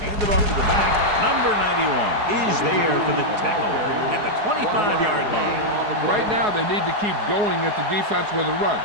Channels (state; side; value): late; left; 4.7 ms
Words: Hand it off to the back. Number 91 is there for the tackle at the 25-yard line. Right now, they need to keep going at the defense with a run.